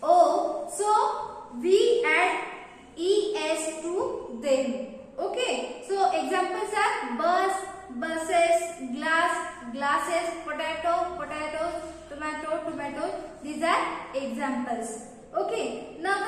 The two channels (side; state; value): both; identical; correlation 1.00